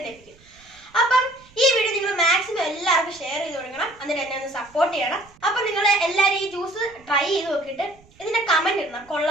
ലഭിക്കും. അപ്പം ഈ വീഡിയോ നിങ്ങൾ മാക്സിമം എല്ലാവർക്കും ഷെയർ ചെയ്ത് കൊടുക്കണം. എന്നിട്ട് എന്നെ ഒന്ന് സപ്പോർട്ട് ചെയ്യണം. അപ്പൊ നിങ്ങൾ എല്ലാവരും ഈ ജ്യൂസ് ട്രൈ ചെയ്ത് നോക്കിയിട്ട് ഇതിന്റെ കമന്റ് ഇടണം,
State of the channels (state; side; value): noise; right; rumble, 28 dB below the sound